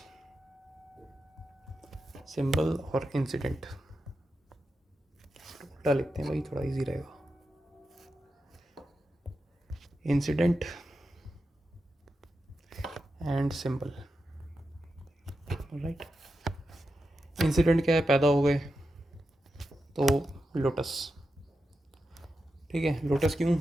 और इंसिडेंट उल्टा लिखते हैं भाई, थोड़ा इजी रहेगा। Incident and symbol, right. Incident क्या है, पैदा हो गए तो लोटस, ठीक है। लोटस क्यों,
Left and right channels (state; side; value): normal; both; correlation 0.89